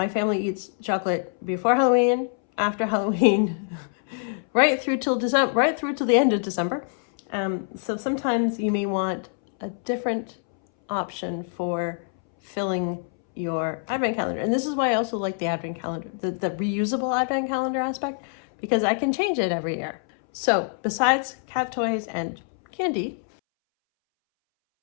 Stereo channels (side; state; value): right; silent; 62 dB below the other